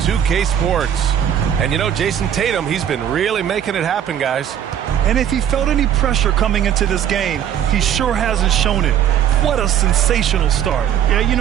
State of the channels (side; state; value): left; quieter; 9.8 dB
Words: Sports. And you know, Jason Tatum, he's been really making it happen, guys. And if he felt any pressure coming into this game, he sure hasn't shown it. What a sensational start. Yeah, you